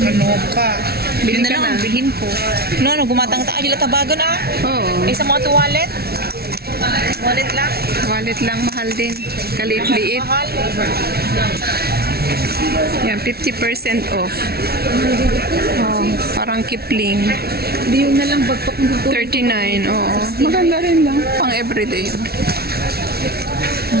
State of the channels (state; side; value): late; left; 0.45 ms